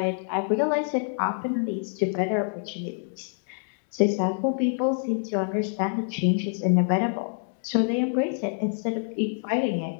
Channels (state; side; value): silent; right; digital silence